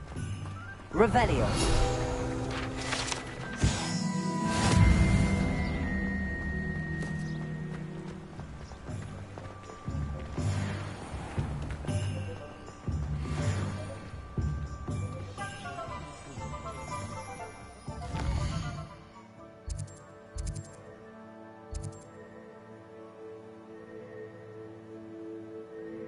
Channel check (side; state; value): both; identical; correlation 1.00